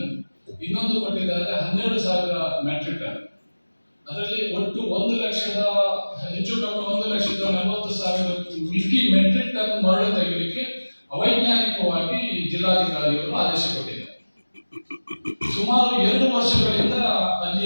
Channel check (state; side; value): inverted; both; correlation -1.00